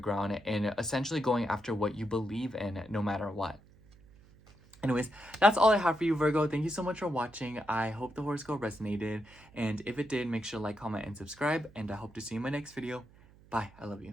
and essentially going after what you believe in, no matter what. Anyways, that's all I have for you, Virgo. Thank you so much for watching. I hope the horoscope resonated. And if it did, make sure to like, comment, and subscribe. And I hope to see you in my next video. Bye. I love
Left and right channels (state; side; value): noise; right; hum, 25 dB below the sound